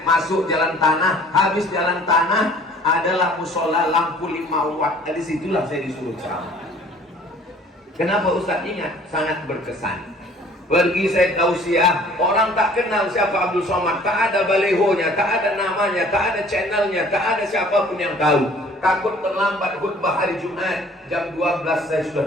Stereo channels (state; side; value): normal; both; correlation 0.53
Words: masuk jalan tanah, habis jalan tanah adalah musola lampu 5 watt. Dari situlah saya disuruh ceramah. Kenapa Ustaz ingat? Sangat berkesan. Pergi saya tausiah, orang tak kenal siapa Abdul Somad, tak ada balehonya, tak ada namanya, tak ada channelnya, tak ada siapapun yang tahu. Takut terlambat khutbah hari Jumat, jam 12 saya